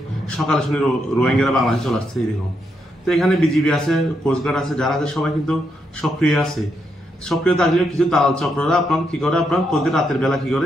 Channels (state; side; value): normal; both; correlation 0.80